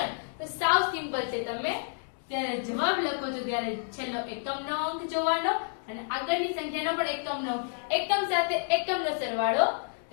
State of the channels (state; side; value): silent; right; digital silence